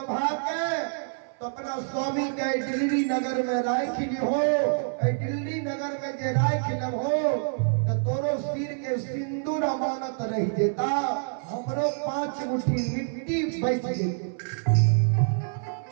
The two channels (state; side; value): silent; left; 55 dB below the other